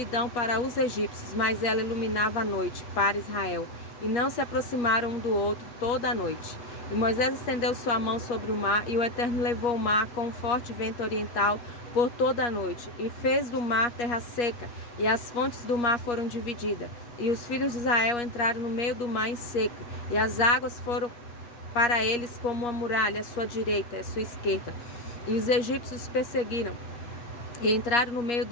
para os egípcios, mas ela iluminava a noite para Israel, e não se aproximaram um do outro toda a noite. E Moisés estendeu sua mão sobre o mar, e o Eterno levou o mar com um forte vento oriental por toda a noite, e fez do mar terra seca, e as fontes do mar foram divididas. E os filhos de Israel entraram no meio do mar em seco, e as águas foram para eles como uma muralha à sua direita e à sua esquerda. E os egípcios os perseguiram, e entraram no meio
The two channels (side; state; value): right; late; 8.4 ms